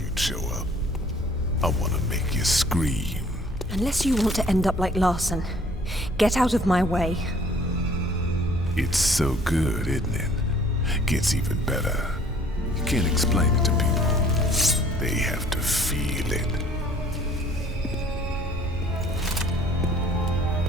show up. I want to make you scream. Unless you want to end up like Larson. Get out of my way. It's so good, isn't it? Gets even better. You can't explain it to people. They have to feel it.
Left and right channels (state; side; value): normal; both; correlation 0.56